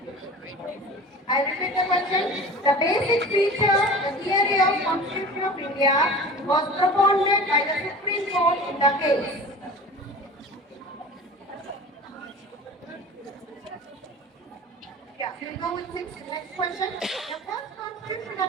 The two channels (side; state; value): both; normal; correlation 0.38